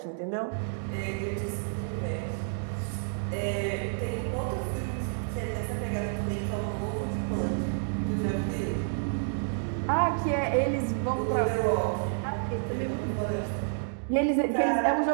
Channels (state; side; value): silent; left; digital silence